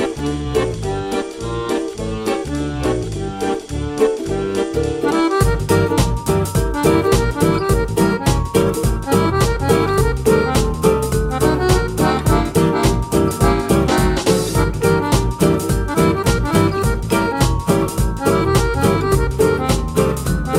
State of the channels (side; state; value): both; identical; correlation 1.00